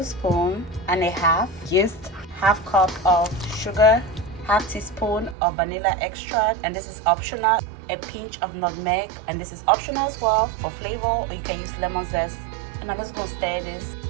and a half yeast, half cup of sugar, half teaspoon of vanilla extract, and this is optional, a pinch of nutmeg, and this is optional as well for flavor, or you can use lemon zest. And I'm just going to stir this.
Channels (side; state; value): left; drops out; at 5.4 s